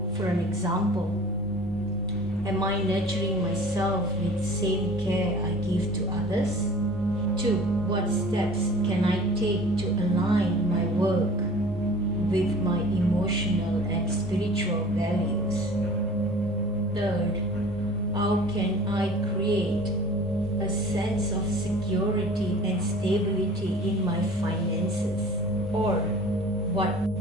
For an example, am I nurturing myself with the same care I give to others? 2. What steps can I take to align my work with my emotional and spiritual values? 3. How can I create a sense of security and stability in my finances? Or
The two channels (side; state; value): both; normal; correlation 0.44